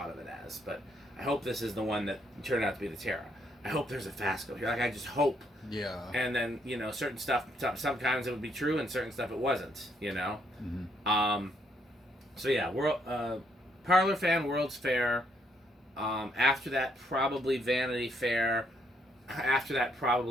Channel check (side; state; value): both; normal; correlation 0.72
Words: of it as, but I hope this is the one that turned out to be the Terra. I hope there's a Fasco here. Like, I just hope. Yeah. And then, you know, certain stuff, sometimes it would be true, and certain stuff it wasn't, you know? So yeah, Parlor fan, World's Fair. After that, probably Vanity Fair. After that,